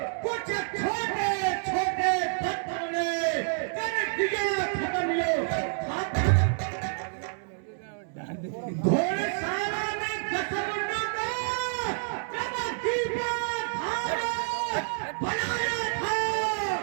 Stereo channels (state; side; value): silent; left; 59 dB below the other